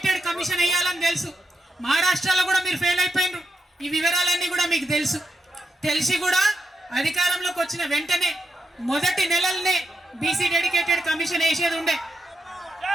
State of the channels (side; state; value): both; normal; correlation 0.85